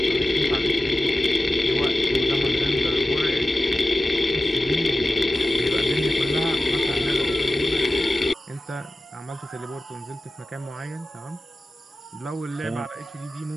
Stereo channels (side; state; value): both; normal; correlation 0.94